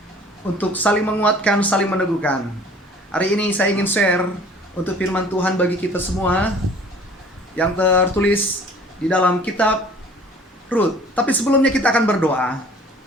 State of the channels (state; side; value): normal; both; correlation 0.50